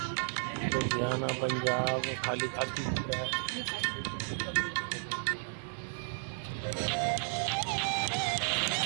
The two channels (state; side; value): silent; left; 56 dB below the other